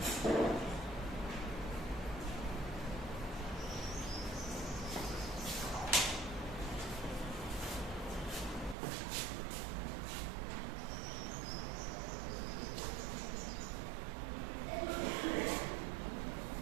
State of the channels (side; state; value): left; drops out; at 8.8 s